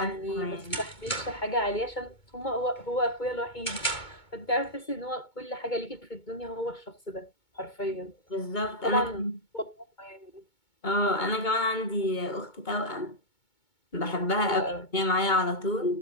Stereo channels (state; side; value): late; right; 2.2 ms